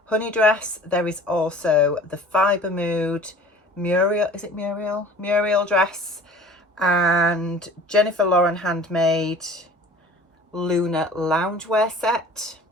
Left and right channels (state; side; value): normal; both; correlation 0.45